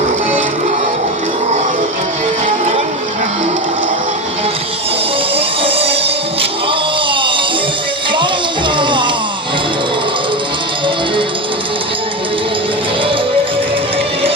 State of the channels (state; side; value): normal; both; correlation 0.20